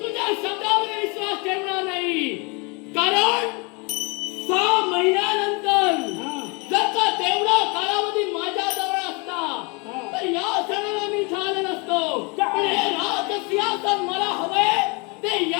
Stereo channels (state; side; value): quieter; right; 30.5 dB